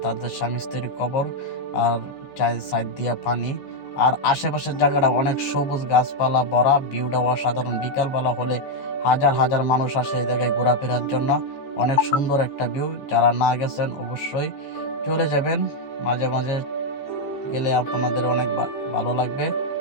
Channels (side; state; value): right; late; 15 ms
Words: তাদের স্বামী স্ত্রীর কবর, আর চার সাইড দিয়ে পানি। আর আশেপাশের জায়গাটা অনেক সবুজ গাছপালা ভরা, ভিউটা অসাধারণ। বিকালবেলা হলে হাজার হাজার মানুষ আসে এই জায়গায় ঘোরাফেরার জন্য। অনেক সুন্দর একটা ভিউ। যারা না গেছেন অবশ্যই চলে যাবেন, মাঝে মাঝে গেলে আপনাদের অনেক ভালো লাগবে।